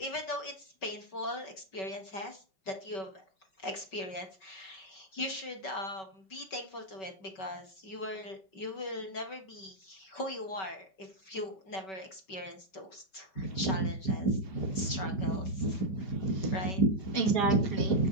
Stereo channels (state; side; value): late; right; 5.2 ms